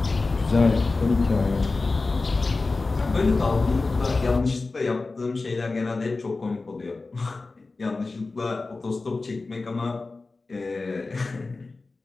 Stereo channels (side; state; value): right; quieter; 3.6 dB